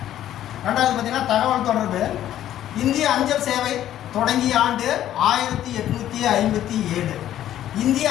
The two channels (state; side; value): quieter; right; 12.0 dB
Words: 2வது பார்த்தீங்கன்னா தகவல் தொடர்பு. இந்திய அஞ்சல் சேவை தொடங்கிய ஆண்டு 1857. இந்திய